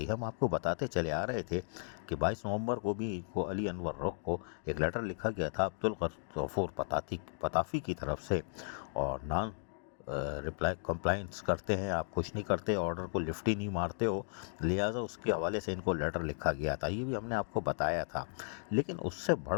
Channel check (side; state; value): right; silent; digital silence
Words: हम आपको बताते चले आ रहे थे कि 22 नवंबर को भी को अली अनवर रोक को एक लेटर लिखा गया था अब्दुल गफूर पताफी की तरफ से, और नॉन रिप्लाई कंप्लाइंस करते हैं, आप कुछ नहीं करते, ऑर्डर को लिफ्ट ही नहीं मारते हो, लिहाजा उसके हवाले से इनको लेटर लिखा गया था। ये भी हमने आपको बताया था। लेकिन उससे